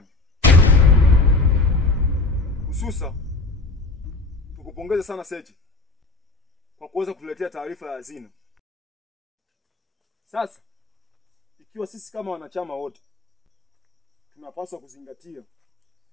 Hususa tukupongeze sana Sechi kwa kuweza kutuletea taarifa ya hazina. Sasa ikiwa sisi kama wanachama wote tunapaswa kuzingatia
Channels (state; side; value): quieter; right; 3.5 dB